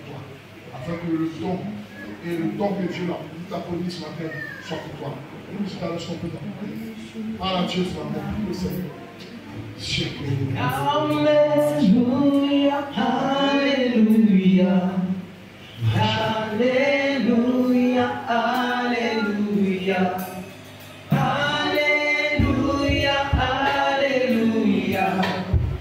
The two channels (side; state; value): both; identical; correlation 1.00